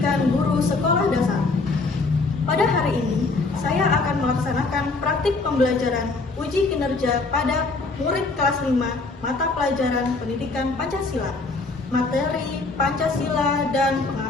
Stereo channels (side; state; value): right; quieter; 3.7 dB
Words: guru sekolah dasar. Pada hari ini, saya akan melaksanakan praktik pembelajaran uji kinerja pada murid kelas 5 mata pelajaran pendidikan Pancasila, materi Pancasila dan